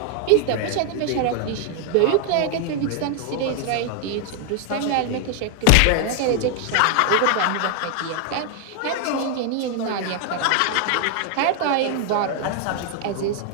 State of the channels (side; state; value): both; different; correlation 0.00